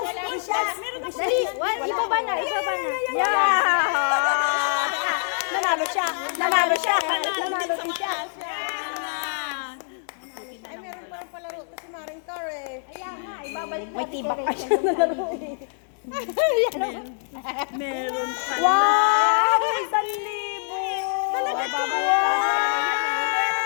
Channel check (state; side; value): silent; right; digital silence